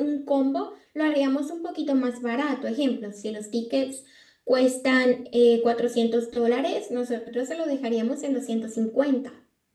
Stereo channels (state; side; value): identical; both; correlation 1.00